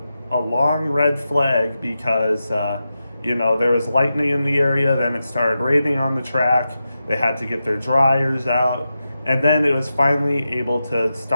red flag because there was lightning in the area. Then it started raining on the track. They had to get their dryers out, and then it was finally able to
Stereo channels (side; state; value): both; inverted; correlation -0.90